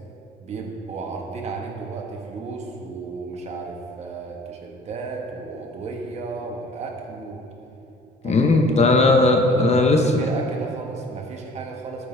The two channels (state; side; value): normal; both; correlation 0.51